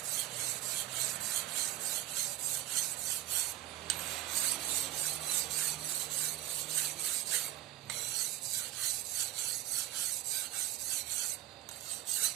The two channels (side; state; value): left; quieter; 13.8 dB